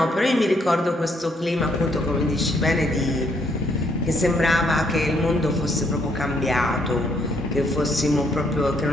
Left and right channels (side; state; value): both; normal; correlation 0.71